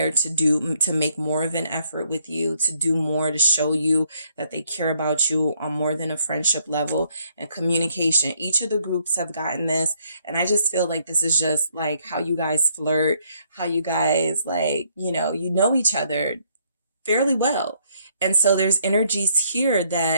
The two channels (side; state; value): both; inverted; correlation -0.69